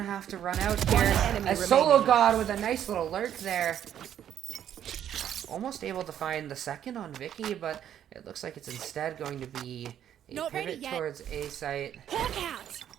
to have to run out here. As sologod with a nice little lurk there. Almost able to find the second on Vicky, but it looks like it's instead going to be a pivot towards A site.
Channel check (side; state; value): left; quieter; 10.2 dB